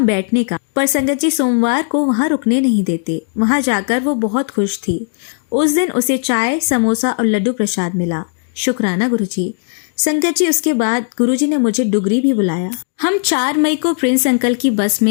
बैठने का, पर संगत जी सोमवार को वहाँ रुकने नहीं देते। वहाँ जाकर वो बहुत खुश थी। उस दिन उसे चाय, समोसा और लड्डू प्रसाद मिला। शुक्राना गुरुजी। संगत जी, उसके बाद गुरुजी ने मुझे डुगरी भी बुलाया। हम 4 मई को प्रिंस अंकल की बस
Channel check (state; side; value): silent; right; digital silence